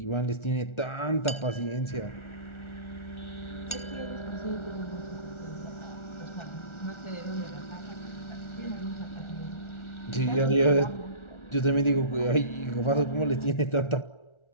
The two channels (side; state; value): right; late; 1.4 ms